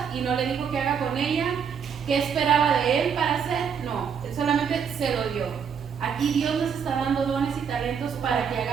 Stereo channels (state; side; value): quieter; left; 7.0 dB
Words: y no le dijo qué haga con ella, qué esperaba de él para hacer, no, él solamente se lo dio. Aquí Dios nos está dando dones y talentos para que